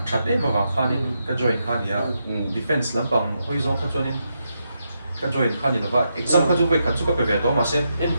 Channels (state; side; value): inverted; both; correlation -0.83